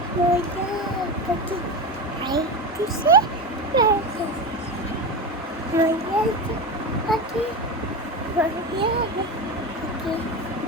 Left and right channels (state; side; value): normal; both; correlation 0.21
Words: ময়না পাটি আই দিছে ময়না পাটি